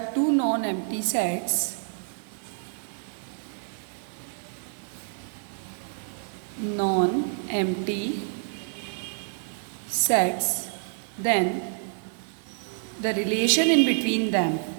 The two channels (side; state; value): left; silent; 59 dB below the other